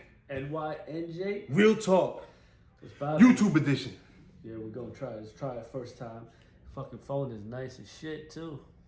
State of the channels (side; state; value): both; identical; correlation 1.00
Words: NYNJ Real Talk, so YouTube edition. Yeah, we're gonna try. Let's try it first time. Fucking phone is nice as shit too.